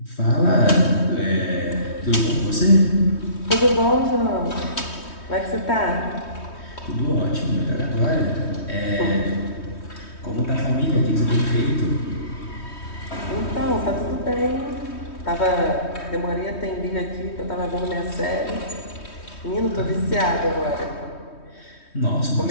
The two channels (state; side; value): late; right; 3.2 ms